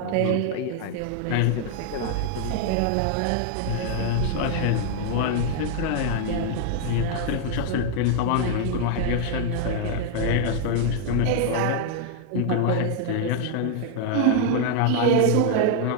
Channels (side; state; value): both; different; correlation 0.00